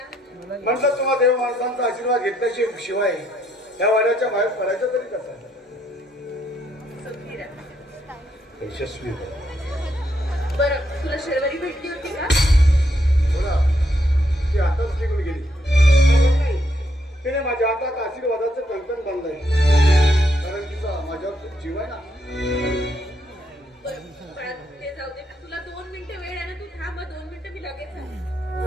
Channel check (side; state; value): both; normal; correlation 0.75